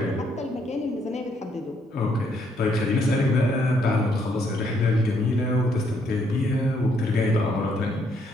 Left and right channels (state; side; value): normal; both; correlation 0.71